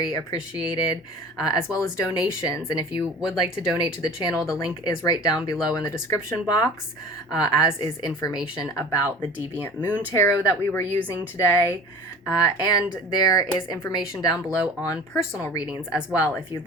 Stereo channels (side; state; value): both; normal; correlation 0.41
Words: appreciated, as well as donations. And if you would like to donate to the channel, the link is right down below in the description box, as is information about the Deviant Moon Tarot that we were using today. And there is information down below on personal readings as well. If you'd